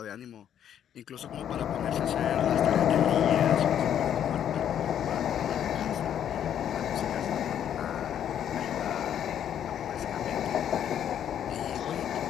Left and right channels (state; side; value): quieter; right; 9.8 dB